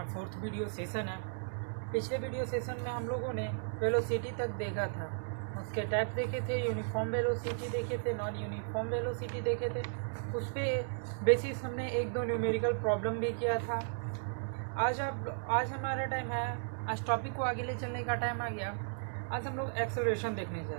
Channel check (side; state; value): left; silent; digital silence